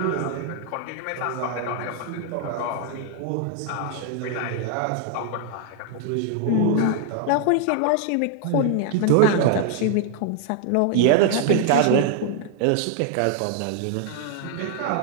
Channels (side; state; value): both; different; correlation 0.00